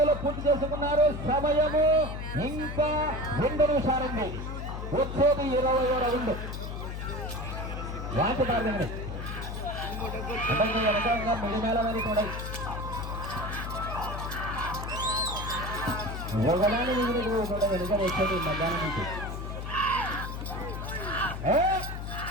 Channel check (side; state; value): left; noise; hum, 6 dB below the sound